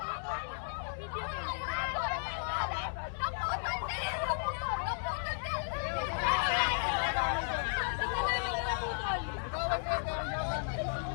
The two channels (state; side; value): silent; right; digital silence